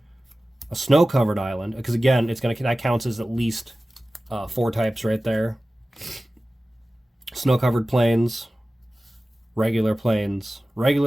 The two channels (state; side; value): normal; both; correlation 0.96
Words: snow-covered island, because again, that counts as at least 4 types right there. Snow-covered plains, regular plains,